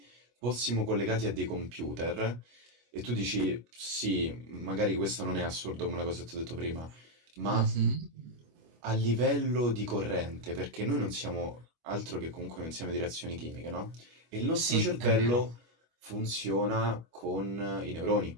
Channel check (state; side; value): late; left; 25 ms